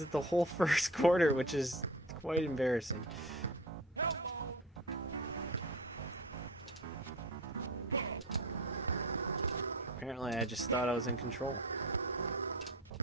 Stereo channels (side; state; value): both; normal; correlation 0.35